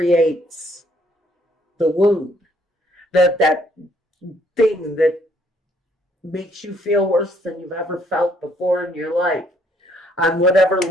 the wound, that thing that makes you feel worse than you've ever felt before in your life, on whatever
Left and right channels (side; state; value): both; normal; correlation 0.66